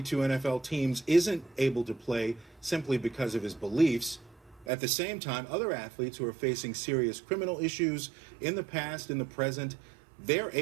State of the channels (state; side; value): drops out; left; at 4.7 s